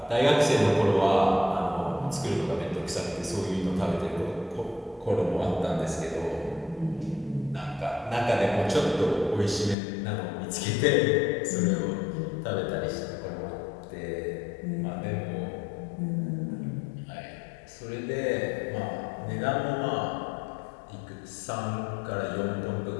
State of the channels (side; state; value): right; drops out; at 9.8 s